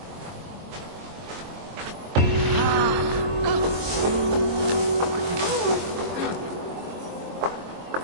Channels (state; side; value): late; left; 23 ms